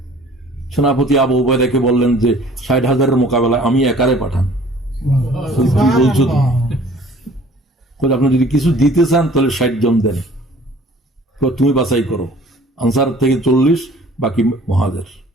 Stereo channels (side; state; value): both; normal; correlation 0.52